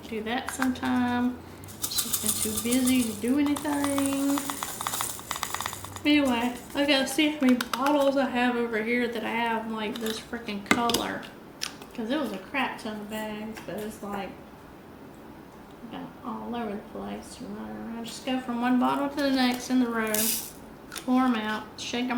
do that sometime. She's been too busy to do anything. Anyway, I gotta see how many bottles I have over here that I have like this freaking color. Because it was a crap ton of bags, but it's like all over the place. Running around. Just go from one bottle to the next in the row. Pour them out, shake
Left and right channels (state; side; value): identical; both; correlation 1.00